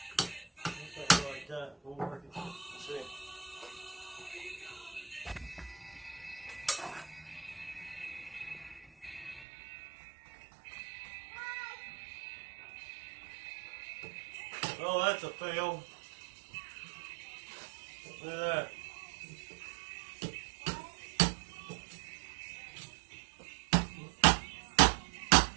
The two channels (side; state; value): left; drops out; at 9.5 s